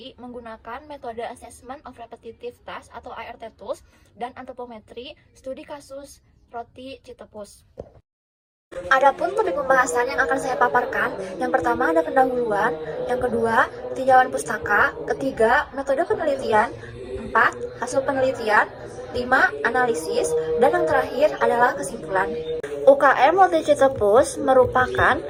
menggunakan metode Assessment of Repetitive Task atau ART Tools dan antropometri studi kasus roti Citepus. Adapun topik pembahasan yang akan saya paparkan, yang pertama ada pendahuluan, yang kedua tinjauan pustaka, ketiga metode penelitian, 4 hasil penelitian, 5 analisis, dan yang terakhir adalah kesimpulan. UKM Roti Citepus merupakan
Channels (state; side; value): identical; both; correlation 1.00